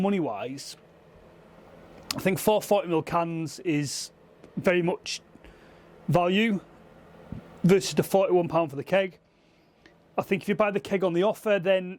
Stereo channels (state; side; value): identical; both; correlation 1.00